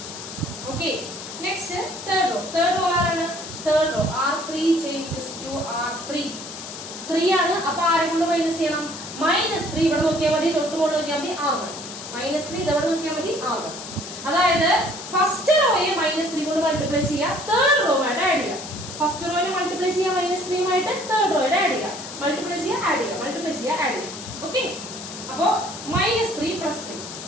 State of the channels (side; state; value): left; noise; hiss, 11 dB below the sound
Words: Okay, next third row. Third row ആരാണ്, third row R3 changes to R3 3 ആണ്. അപ്പൊ ആരെ കൊണ്ട് മൈനസ് ചെയ്യണം, -3 ഇവിടെ നോക്കിയാൽ മതി, തൊട്ട് കൊണ്ട് നോക്കിയാൽ മതി R1 -3 ഇതവിടെ നോക്കിയാൽ മതി R1. അതായത് ഫസ്റ്റ് റോയെ -3 കൊണ്ട് മൾട്ടിപ്ലൈ ചെയ്യുക, തേർഡ് റോയുമായിട്ട് ആഡ് ചെയ്യുക. ഫസ്റ്റ് റോയെ മൾട്ടിപ്ലൈ ചെയ്യുക -3 ആയിട്ട്, തേർഡ് റോയുടെ ആഡ് ചെയ്യുക, മൾട്ടിപ്ലൈ ചെയ്യുക, ആഡ് ചെയ്യുക, മൾട്ടിപ്ലൈ ചെയ്യുക, ആഡ് ചെയ്യുക. ഓക്കെ, അപ്പോ -3 + 3